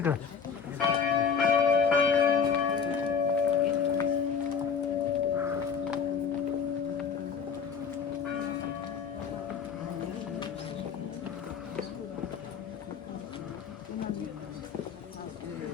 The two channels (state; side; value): quieter; right; 6.3 dB